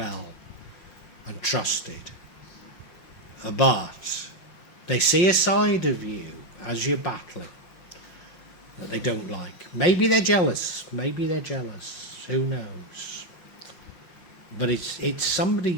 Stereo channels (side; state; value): right; late; 5.6 ms